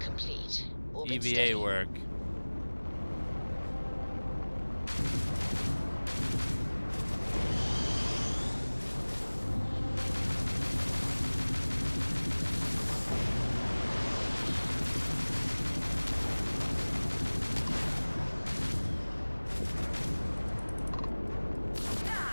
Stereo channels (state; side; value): inverted; both; correlation -1.00